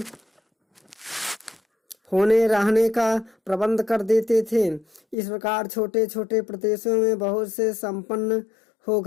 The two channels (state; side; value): drops out; right; at 5.2 s